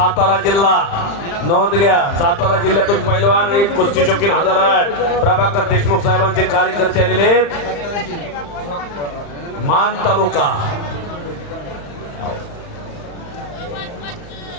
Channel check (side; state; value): right; late; 35 ms